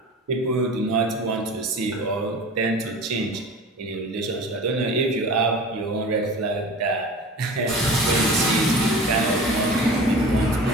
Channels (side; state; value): both; normal; correlation 0.38